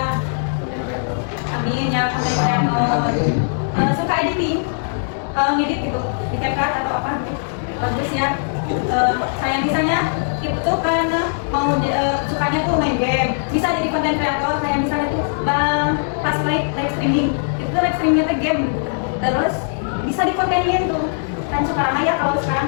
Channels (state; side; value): silent; right; digital silence